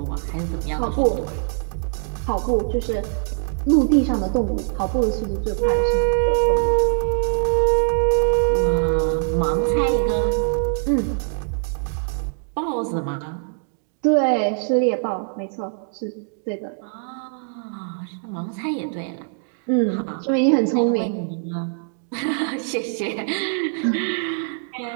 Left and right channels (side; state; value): left; silent; digital silence